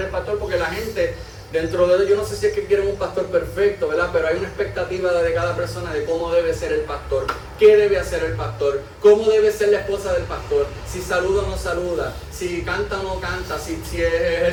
pastor, porque la gente, dentro de ellos, yo no sé si es que quieren un pastor perfecto, ¿verdad? Pero hay una expectativa de cada persona de cómo debe ser el pastor, qué debe hacer el pastor, cómo debe ser la esposa del pastor, si saluda o no saluda, si canta o no canta, si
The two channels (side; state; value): both; identical; correlation 1.00